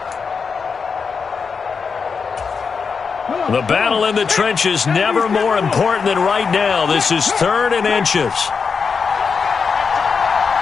The battle in the trenches never more important than right now. This is 3rd and inches.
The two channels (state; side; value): quieter; right; 5.5 dB